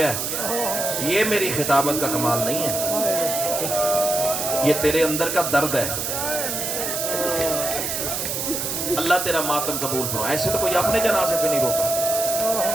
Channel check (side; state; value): right; noise; hiss, 2 dB below the sound